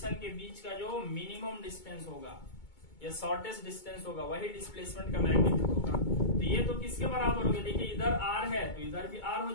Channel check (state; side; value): late; right; 2.2 ms